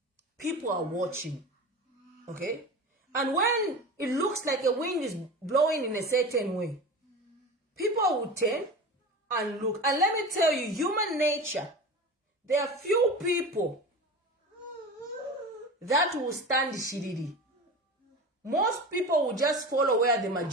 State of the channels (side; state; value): both; normal; correlation 0.31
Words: people are watching. Okay? And when it looks like a wind is blowing in a certain way, people will turn and look. And let me tell you, human nature, there are few people that will stand shiriri. Most people will just follow where the